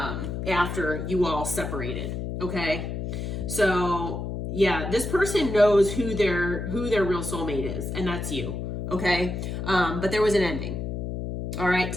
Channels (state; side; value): noise; left; hum, 4 dB below the sound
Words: after you all separated, okay? So yeah, this person knows who their real soulmate is, and that's you, okay? But there was an ending. All right,